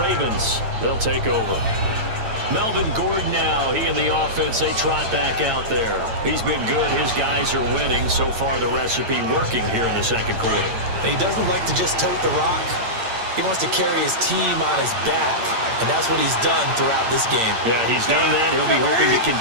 Ravens, they'll take over. Melvin Gordon now, he and the offense, they trot back out there. He's been good. His guys are winning. So far, the recipe working here in the 2nd quarter. He doesn't like to just tote the rock. He wants to carry his team on his back, and that's what he's done throughout this game. Yeah, he's done that. He'll be hoping to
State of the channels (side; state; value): left; late; 8.8 ms